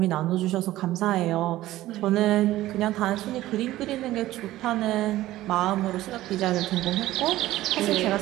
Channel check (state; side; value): quieter; left; 15.6 dB